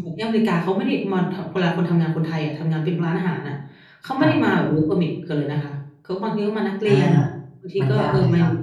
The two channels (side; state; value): both; identical; correlation 1.00